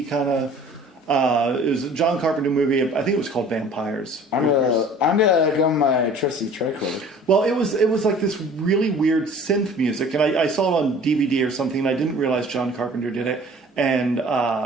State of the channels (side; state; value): both; normal; correlation 0.48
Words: kind of. It was a John Carpenter movie. I think it was called Vampires. I'm gonna go my trusty tricorder. Well, it was like this really weird synth music, and I saw it on DVD or something, and I didn't realize John Carpenter did it. And